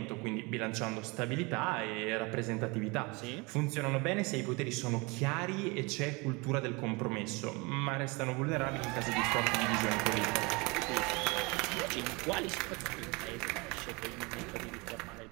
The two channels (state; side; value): quieter; left; 27.0 dB